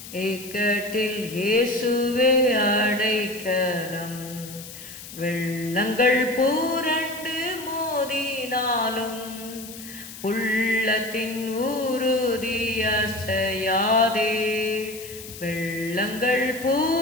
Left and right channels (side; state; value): left; noise; hiss, 14 dB below the sound